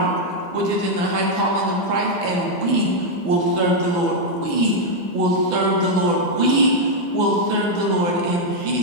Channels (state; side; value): late; left; 6.0 ms